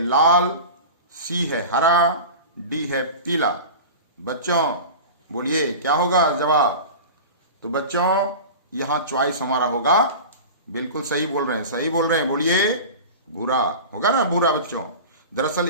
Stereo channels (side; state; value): both; inverted; correlation -0.31